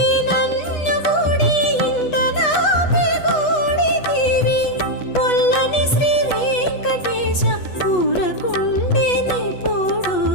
నన్ను గూడి ఇంట నాపి గూడితివి పొల్లని శ్రీ వెంకటేశ ఊరకుండెని పోడు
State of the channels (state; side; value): late; right; 8.2 ms